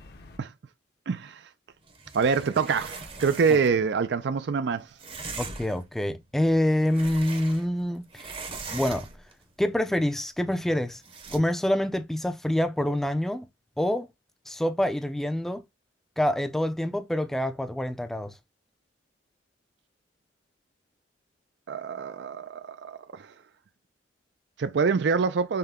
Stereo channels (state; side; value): normal; both; correlation 0.59